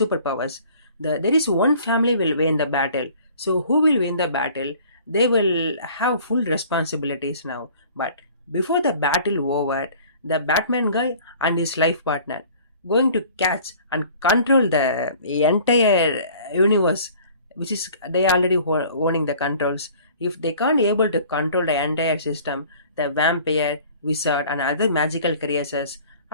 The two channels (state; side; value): inverted; both; correlation -0.50